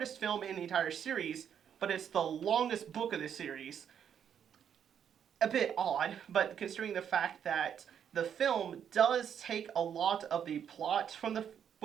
film in the entire series, but it's the longest book of the series. A bit odd, but considering the fact that the film does take a lot of the plot from the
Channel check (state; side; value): quieter; left; 8.5 dB